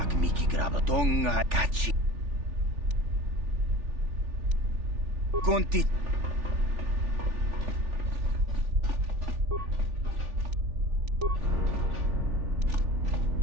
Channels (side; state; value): left; late; 3.4 ms